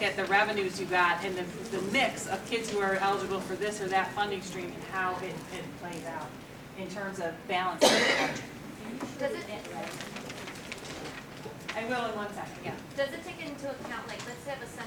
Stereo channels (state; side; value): identical; both; correlation 1.00